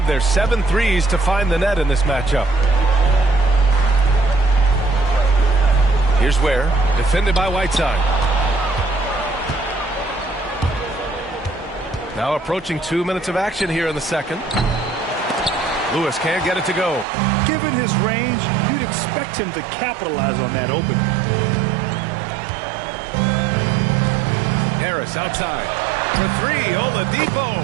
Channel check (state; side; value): drops out; left; at 17.1 s